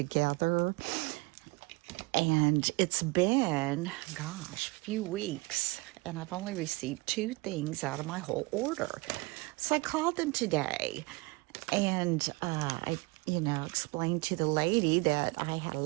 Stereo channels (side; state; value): left; quieter; 25.1 dB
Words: And it's been, gosh, a few weeks, and I've only received 2 things out of my whole order. So I called them today, and I, explained to the lady that I had a